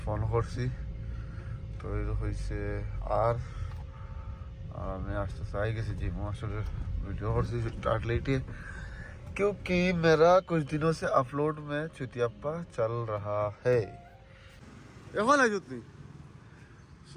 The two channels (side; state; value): both; identical; correlation 1.00